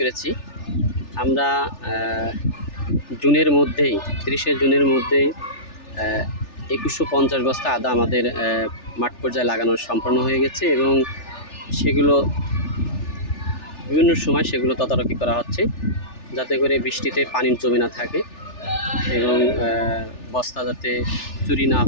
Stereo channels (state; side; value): late; right; 3.4 ms